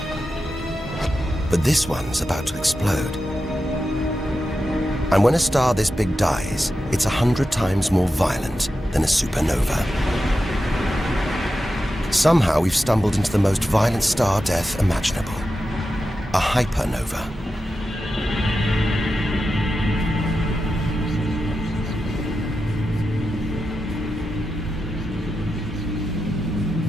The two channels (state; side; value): normal; both; correlation 0.90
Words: But this one's about to explode. And when a star this big dies, it's 100 times more violent than a supernova. Somehow we've stumbled into the most violent star death imaginable. A hypernova.